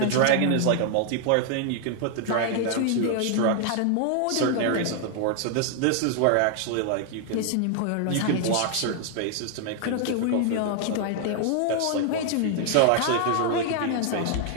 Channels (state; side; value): different; both; correlation 0.00